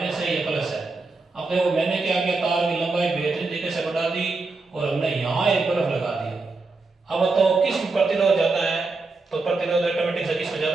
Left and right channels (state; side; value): quieter; left; 3.7 dB